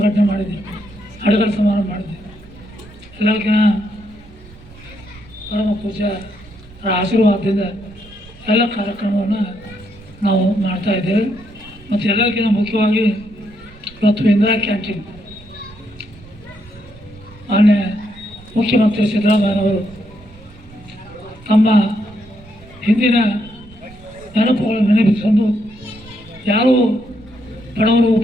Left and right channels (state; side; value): noise; right; rumble, 22 dB below the sound